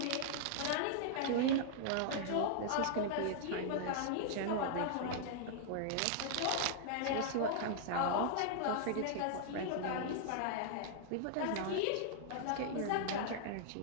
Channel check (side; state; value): both; different; correlation -0.01